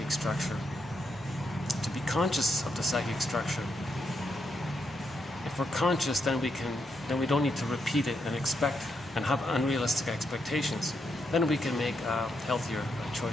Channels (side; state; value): both; normal; correlation 0.80